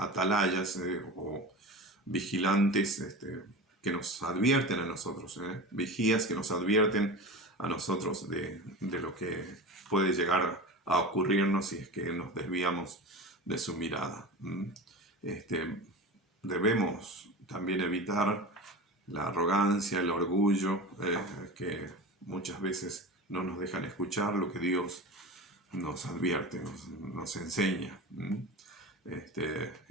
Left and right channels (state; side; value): normal; both; correlation 0.30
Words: o vigilantes que nos advierten a nosotros, vigías que nos advierten a nosotros de lo que puede llegar a ocurrirnos si es que nos desviamos de su mirada. Debemos también evitar la arrogancia, el orgullo, que muchas veces no nos dejan escuchar lo que Dios nos advierte, nos enseña.